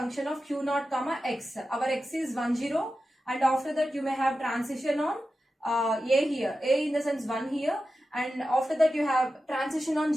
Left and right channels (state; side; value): normal; both; correlation 0.92